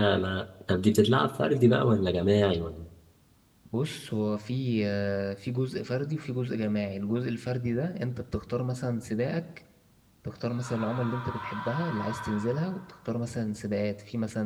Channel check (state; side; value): identical; both; correlation 1.00